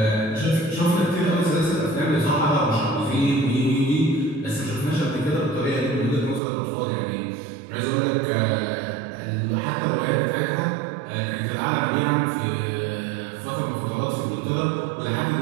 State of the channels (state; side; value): drops out; left; at 6.4 s